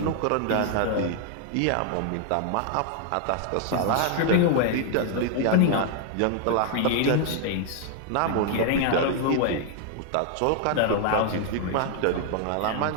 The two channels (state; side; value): different; both; correlation 0.00